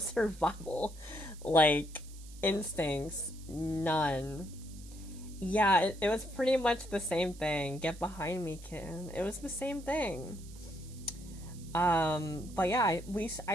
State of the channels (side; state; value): right; noise; hiss, 20 dB below the sound